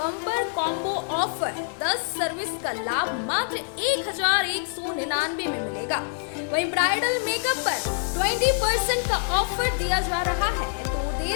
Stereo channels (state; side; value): silent; right; 61 dB below the other